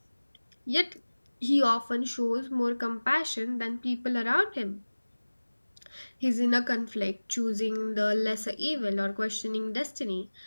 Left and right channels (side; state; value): both; inverted; correlation -1.00